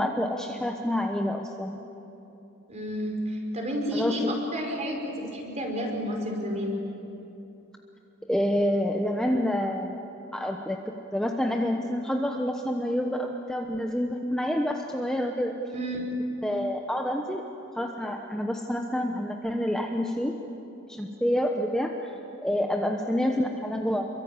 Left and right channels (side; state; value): both; normal; correlation 0.79